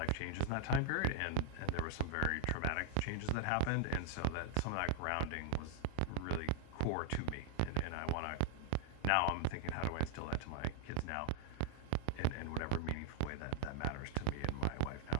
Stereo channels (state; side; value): different; both; correlation 0.00